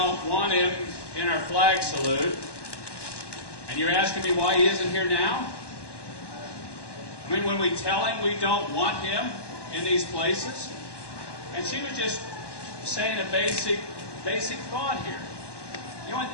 want him in our flag salute. And you're asking me why he isn't here now? I mean, when we tell him we don't want him in these places? And she was just saying a basic thought here. You know,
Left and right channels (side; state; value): right; late; 1.1 ms